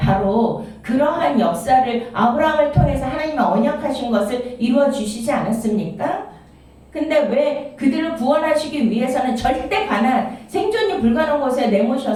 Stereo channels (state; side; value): identical; both; correlation 1.00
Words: 바로 그러한 역사를 아브라함을 통해서 하나님의 언약하신 것을 이루어 주시지 않았습니까? 근데 왜 그들을 구원하시기 위해서는 절대 가난, 생존이 불가능한 곳에